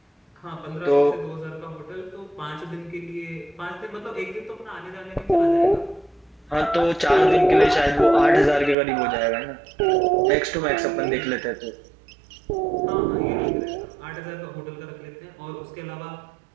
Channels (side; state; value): left; drops out; at 8.8 s